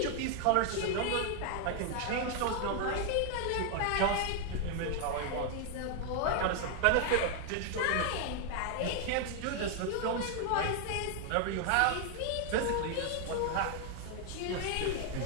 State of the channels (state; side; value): different; both; correlation 0.00